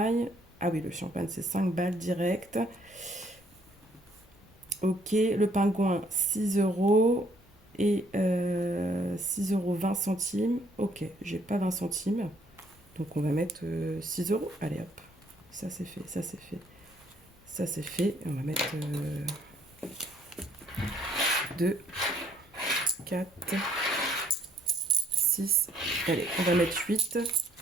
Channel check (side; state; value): both; normal; correlation 0.64